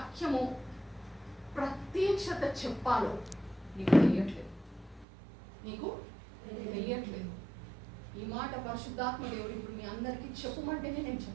ప్రత్యక్షత చెప్పాలో నీకు తెలియట్లేదు. ఈ మాట పరిశుద్ధాత్మ దేవుడు ఇప్పుడు మీ అందరికీ చెప్పమంటేనే నేను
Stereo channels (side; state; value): left; drops out; at 5.1 s